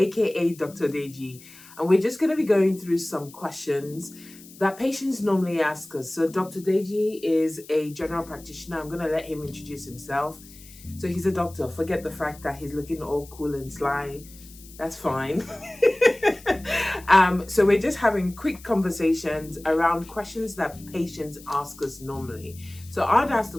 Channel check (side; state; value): left; noise; hiss, 21 dB below the sound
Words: Dr. Deji, and we're just going to be going through some questions that patients normally ask us. So Dr. Deji is a general practitioner. I'm going to let him introduce himself. So he's a doctor. Forget the fact that he's looking all cool and sly. That's fine. So we're just having quick conversations around questions that patients ask us normally. So I'd ask the